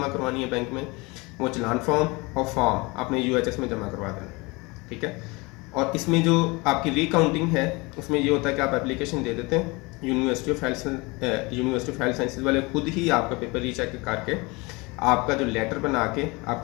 करवानी है बैंक में, वो चलान फॉर्म और फॉर्म आपने यूएचएस में जमा करवा देना है, ठीक है। और इसमें जो आपकी रीकाउंटिंग है उसमें ये होता है कि आप एप्लीकेशन दे देते हैं, यूनिवर्सिटी ऑफ हेल्थ साइंसेज वाले खुद ही आपका पेपर रीचेक करके आपका जो लेटर बना के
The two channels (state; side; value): quieter; right; 25.4 dB